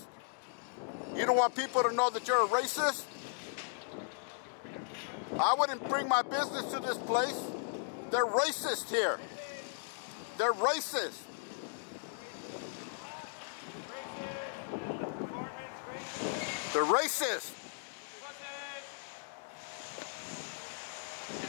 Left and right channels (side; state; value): right; silent; digital silence